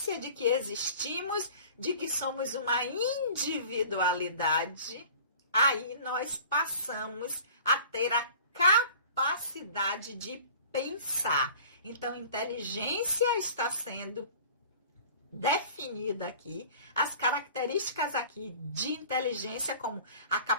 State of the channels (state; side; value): inverted; both; correlation -0.44